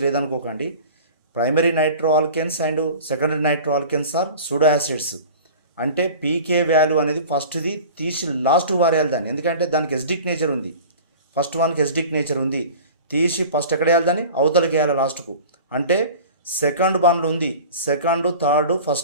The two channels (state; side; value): inverted; both; correlation -0.40